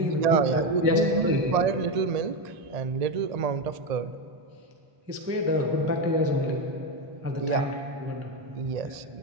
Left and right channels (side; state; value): left; late; 1.7 ms